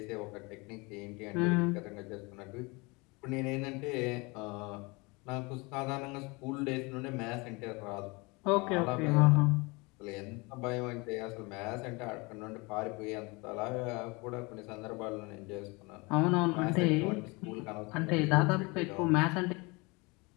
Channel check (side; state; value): right; quieter; 26.6 dB